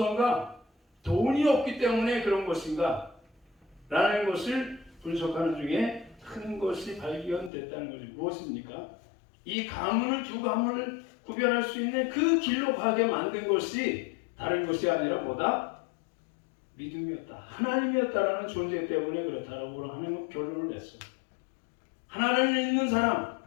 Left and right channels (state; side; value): drops out; right; at 7.5 s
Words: 돈이 없기 때문에 그런 것인가 라는 것을 분석하는 중에 큰 것이 발견됐다는 거죠. 무엇입니까? 이 가문을 두 가문을 구별할 수 있는 그 길로 가게 만든 것이 다른 것이 아니라 뭐다? 믿음이었다. 하나님이었다라는 존재 때문에 그렇다라고 하는 결론을 냈어요. 하나님을 믿는 사람,